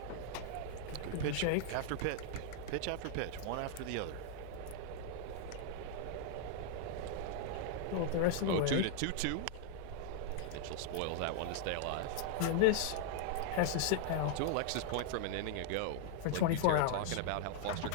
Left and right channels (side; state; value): both; different; correlation -0.01